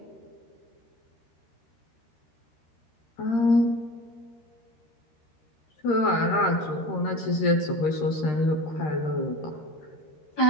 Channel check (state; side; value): late; right; 13 ms